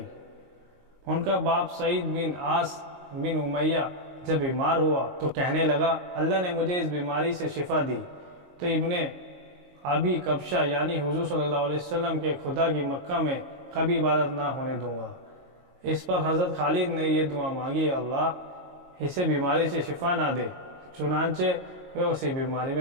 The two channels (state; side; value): late; left; 22 ms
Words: ان کا باپ سعید بن عاص بن امیہ جب بیمار ہوا تو کہنے لگا، اللہ نے مجھے اس بیماری سے شفا دی تو ابن ابی کبشہ یعنی حضور صلی اللہ علیہ وسلم کے خدا کی مکہ میں کبھی عبادت نہ ہونے دوں گا۔ اس پر حضرت خالد نے یہ دعا مانگی، اللہ اسے بیماری سے شفا نہ دے۔ چنانچہ وہ اسی بیماری